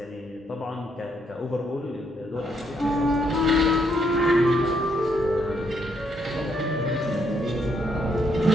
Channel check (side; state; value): both; normal; correlation 0.74